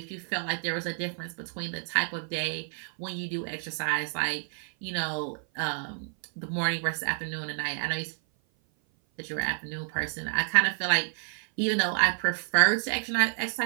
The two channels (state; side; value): silent; left; 56 dB below the other